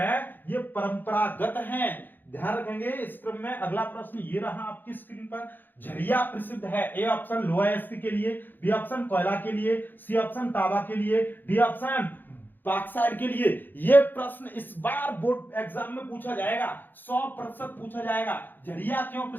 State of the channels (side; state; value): right; late; 0.090 ms